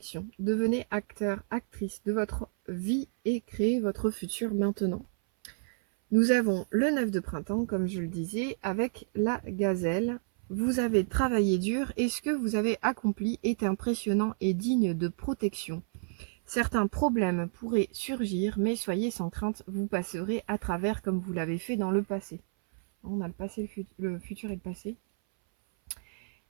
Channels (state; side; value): silent; left; 58 dB below the other